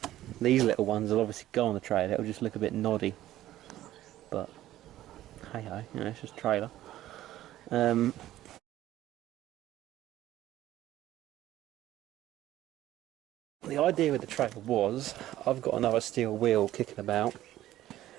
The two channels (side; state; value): left; quieter; 14.1 dB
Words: these little ones will obviously go on the trailer. It'll just look a bit noddy, but hey ho, you know, it's just a trailer. the idea with the trailer was, I've got another steel wheel kicking about,